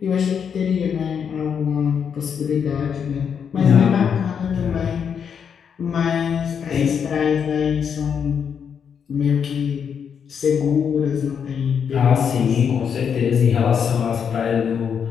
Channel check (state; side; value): quieter; right; 7.3 dB